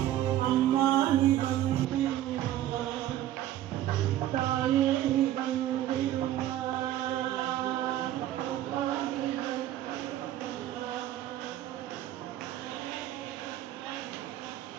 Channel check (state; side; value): quieter; left; 13.0 dB